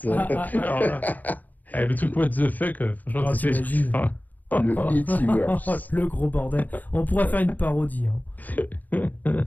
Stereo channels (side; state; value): right; late; 0.084 ms